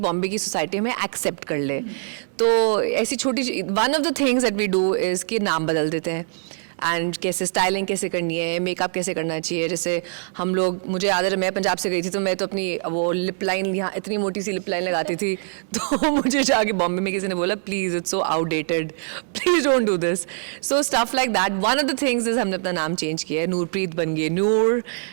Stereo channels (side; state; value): left; silent; 63 dB below the other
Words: की सोसाइटी हमें एक्सेप्ट कर ले। तो ऐसी छोटी one of the things that we do is कि नाम बदल देते हैं। एंड कैसे स्टाइलिंग कैसे करनी है, मेकअप कैसे करना चाहिए. जैसे हम लोग, मुझे याद है मैं पंजाब से गई थी तो मैं तो अपनी वो लिप लाइन, यहाँ इतनी मोटी सी लिप लाइन लगाती थी तो मुझे जाके बॉम्बे में किसी ने बोला please it's so outdated, please don't do this. So stuff like that. One of the things is हमने अपना नाम चेंज किया है. नूरप्रीत बन गई नूर,